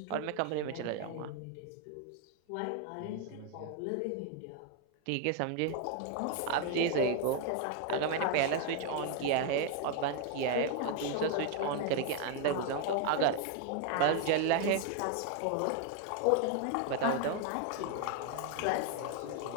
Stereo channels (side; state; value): both; different; correlation 0.01